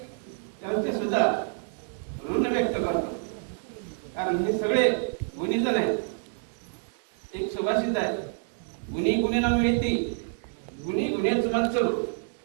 त्यांचे सुद्धा ऋण व्यक्त करतो। कारण हे सगळे गुणीजन आहेत। एक सुभाषित आहे, गुणी गुणेनं मिळती, गुणी गुणेच म्हणतो,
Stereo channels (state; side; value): silent; left; digital silence